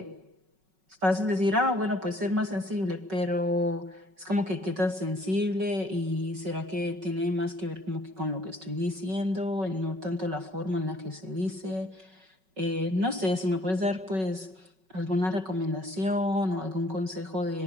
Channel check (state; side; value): late; left; 5.3 ms